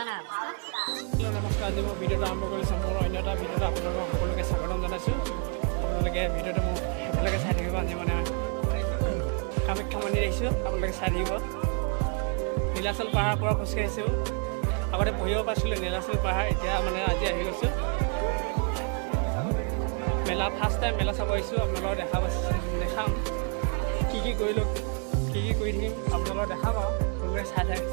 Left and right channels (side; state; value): left; quieter; 38.3 dB